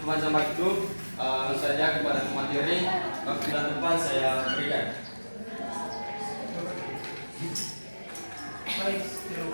waktu, langsung saja kepada materi. Waktu dan depan saya berikan. Baik, terima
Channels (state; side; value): inverted; both; correlation -1.00